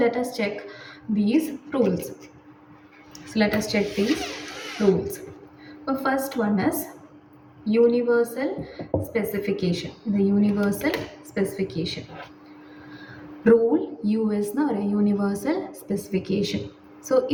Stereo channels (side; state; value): both; identical; correlation 1.00